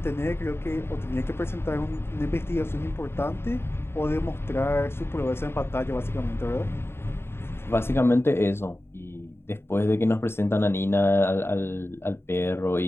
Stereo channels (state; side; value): late; right; 0.11 ms